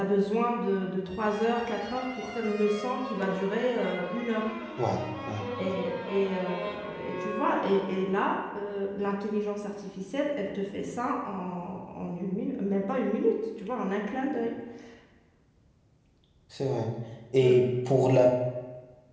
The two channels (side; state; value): both; identical; correlation 1.00